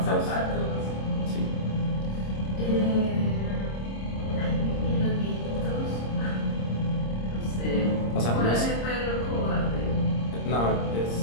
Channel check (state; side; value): late; right; 26 ms